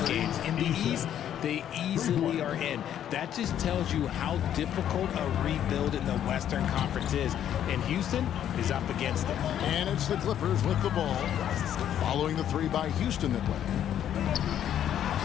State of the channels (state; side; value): quieter; right; 10.4 dB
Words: games. In the East, they easily are in. That just tells you how difficult a rebuild in the Western Conference is. And Houston is up against it. And it's the Clippers with the ball, following the 3 by Houston that way.